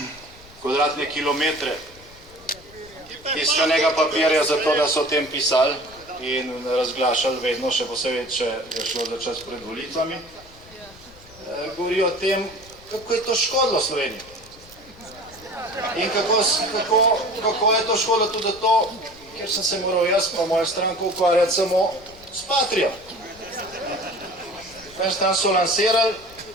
kvadratne kilometre tiskanega papirja za to, da so o tem pisali in razglašali vedno, še posebej, če je šlo za čas pred volitvami, govori o tem, kako je to škodilo Sloveniji. In kako je to škodilo tudi to, ker sem se moral jaz pa moja stranka ukvarjati samo s Patrijo. Prvi stran so lansirali,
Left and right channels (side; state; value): left; noise; rumble, 23 dB below the sound